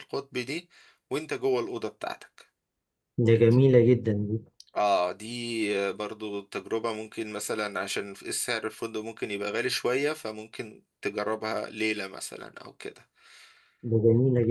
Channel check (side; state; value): both; identical; correlation 1.00